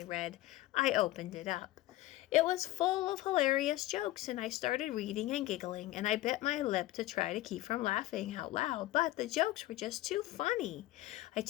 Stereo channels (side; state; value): right; quieter; 16.6 dB